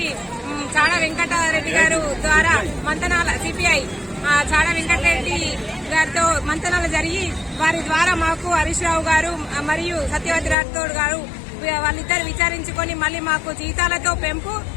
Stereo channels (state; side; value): drops out; right; at 10.6 s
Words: చాడా వెంకటరెడ్డి గారు ద్వారా మంతనాల సిపిఐ చాడా వెంకటరెడ్డి గారితో మంతనాలు జరిగి వారి ద్వారా మాకు హరీష్ రావు గారు మరియు సత్యవతి రాథోడ్ గారు వాళ్ళిద్దరు విచారించుకొని మళ్ళీ మాకు